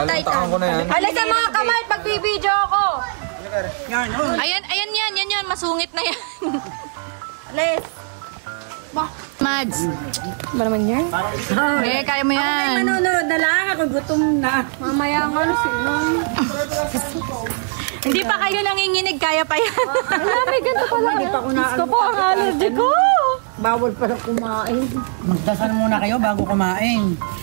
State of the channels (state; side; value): silent; left; 59 dB below the other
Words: Titan. ko na yan. Halika mga kamay, pagbibideo ako. Ayan yan. Masungit na yan. Les. Mads. Ba naman yan? Okay, kaya mo yan. Manonood na lang ako, gutom na. Mamaya nga, Hindi pa kayo nanginginig, kaya pa yan. May ganito pala kayo. Gusto po ang allergy ko. bawal pala kumain. Magdasal muna kayo bago kumain.